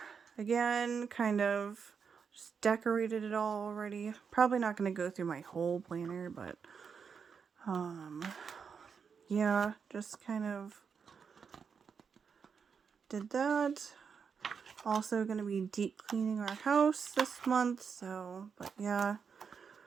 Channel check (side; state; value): left; quieter; 6.2 dB